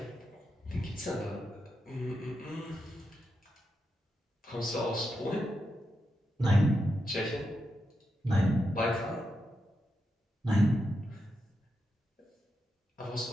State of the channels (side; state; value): both; normal; correlation 0.86